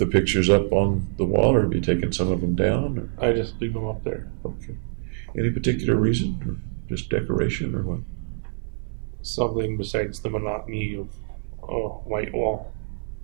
pictures up on the wall, or have you taken some of them down? Or? I just leave them up there. Okay. Any particular reason, or just decoration, or what? Something besides the monotony of a white wall.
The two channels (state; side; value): silent; left; 62 dB below the other